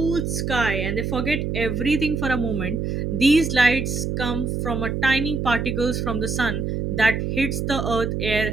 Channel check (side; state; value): right; noise; hum, 2 dB below the sound